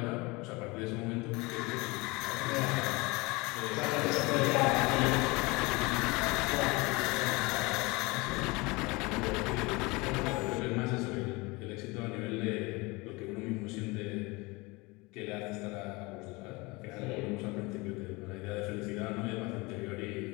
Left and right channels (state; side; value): quieter; right; 24.7 dB